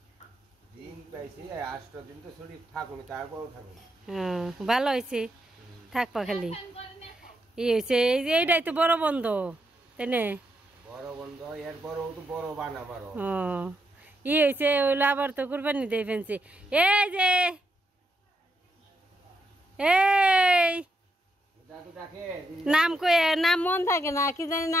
দিন পাইছি 8 দিন তো ছুটি থাকুন, তারপরও থাকুন। ভালো হয়েছে, থাকবা খালি। ই হয়েছে এই যে এইটাই তো বড় বন্ধ, তাই না? বড় বন্ধ এর বড় তো বড় বান আমারও। ই হয়েছে ওইলো আবার তো কুরবানি দিয়ে ফেলছে। এই যে এই নাম কই, নাম মন থাকে না, কি জানি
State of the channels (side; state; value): both; normal; correlation 0.81